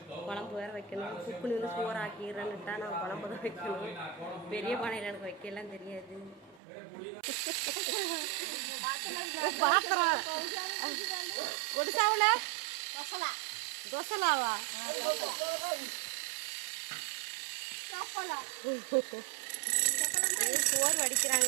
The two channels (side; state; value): left; drops out; at 6.6 s